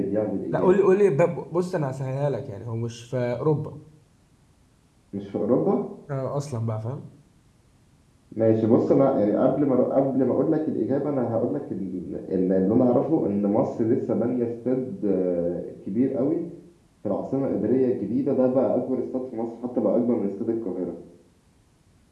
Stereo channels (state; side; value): identical; both; correlation 1.00